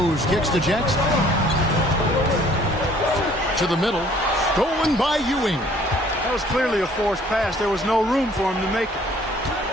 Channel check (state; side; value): normal; both; correlation 0.57